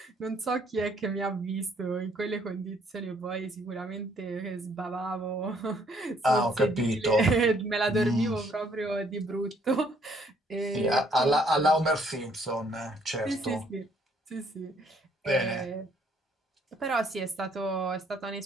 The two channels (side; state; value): both; normal; correlation 0.65